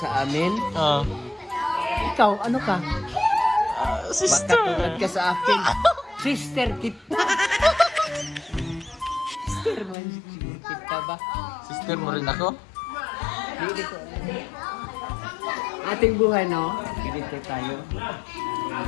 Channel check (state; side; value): drops out; right; at 10.0 s